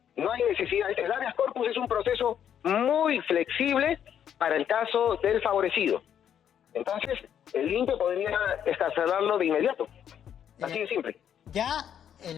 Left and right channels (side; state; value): right; quieter; 9.2 dB